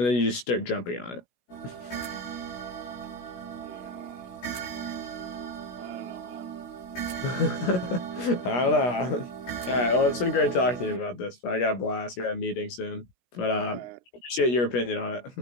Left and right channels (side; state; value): right; late; 16 ms